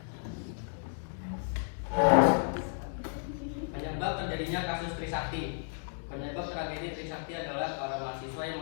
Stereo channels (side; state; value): right; silent; digital silence